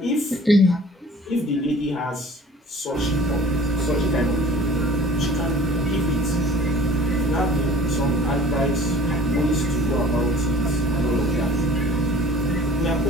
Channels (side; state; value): both; normal; correlation 0.47